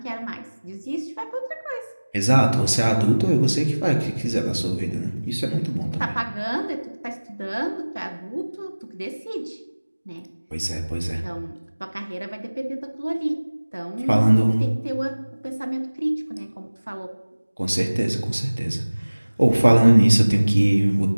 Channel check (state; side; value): inverted; both; correlation -1.00